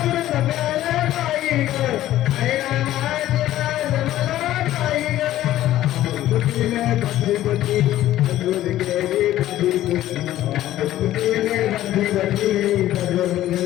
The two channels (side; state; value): right; quieter; 13.8 dB